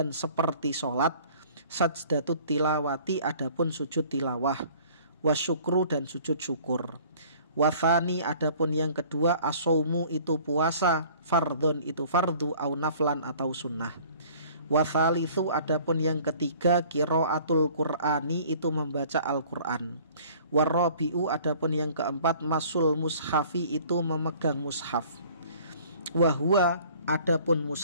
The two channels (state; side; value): inverted; both; correlation -0.52